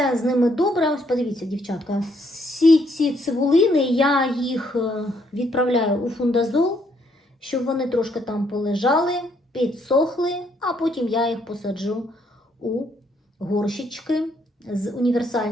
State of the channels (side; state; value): both; normal; correlation 0.71